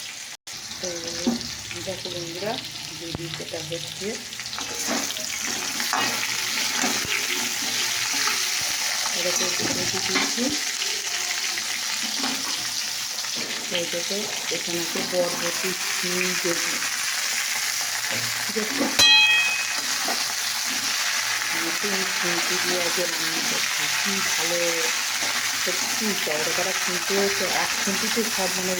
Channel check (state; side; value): identical; both; correlation 1.00